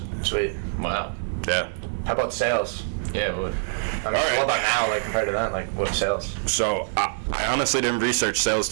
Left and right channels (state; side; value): silent; left; 62 dB below the other